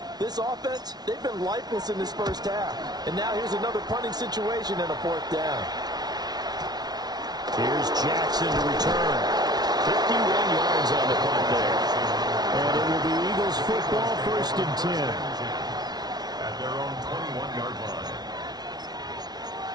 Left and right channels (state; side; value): late; left; 0.19 ms